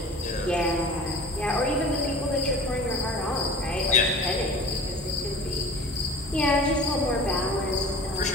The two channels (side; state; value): both; normal; correlation 0.39